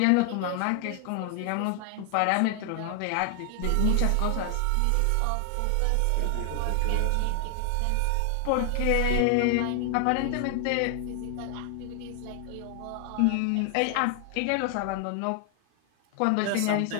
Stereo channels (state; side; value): different; both; correlation 0.00